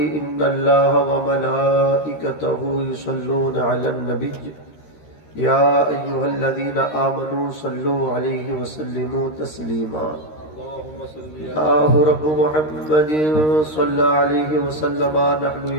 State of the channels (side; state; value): right; late; 13 ms